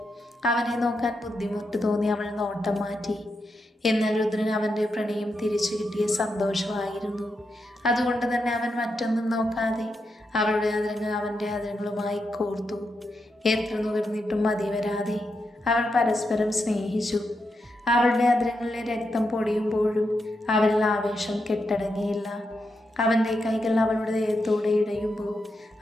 അവനെ നോക്കാൻ ബുദ്ധിമുട്ട് തോന്നി അവൾ നോട്ടം മാറ്റി. എന്നാൽ രുദ്രൻ അവൻ്റെ പ്രണയം തിരിച്ചു കിട്ടിയ സന്തോഷമായിരുന്നു. അതുകൊണ്ട് തന്നെ അവൻ മറ്റൊന്നും നോക്കാതെ അവളുടെ അതിരങ്ങൾ അവൻ്റെ അതിരങ്ങളുമായി കോർത്തു. എത്ര നുകർന്നിട്ടും മതി വരാതെ അവൾ പരസ്പരം സ്നേഹിച്ചു. അവളുടെ അതിരങ്ങളിലെ രക്തം പൊടിയുമ്പോഴും അവരിൽ ആവേശം കെട്ടടങ്ങിയില്ല. അവൻ്റെ കൈകൾ അവളുടെ ദേഹത്തോടെ ഇടയുമ്പോൾ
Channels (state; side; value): normal; both; correlation 0.85